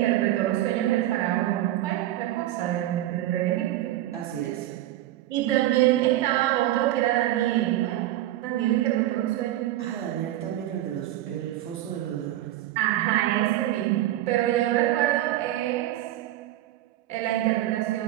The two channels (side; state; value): left; quieter; 14.3 dB